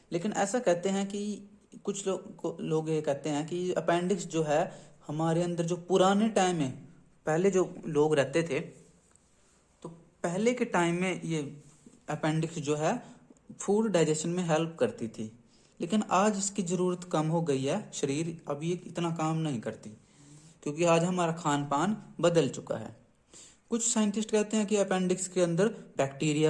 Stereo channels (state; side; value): identical; both; correlation 1.00